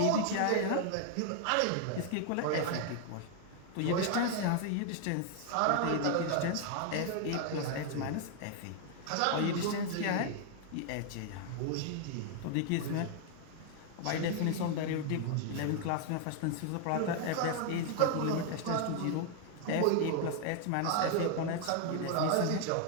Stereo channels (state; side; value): different; both; correlation 0.00